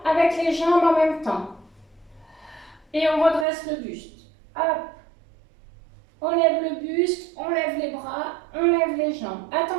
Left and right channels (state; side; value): drops out; left; at 3.5 s